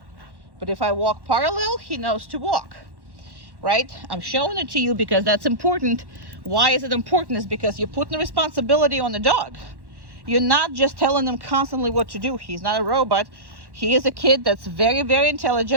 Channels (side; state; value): left; late; 1.1 ms